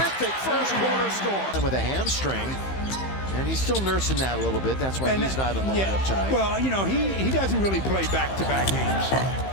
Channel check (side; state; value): right; late; 15 ms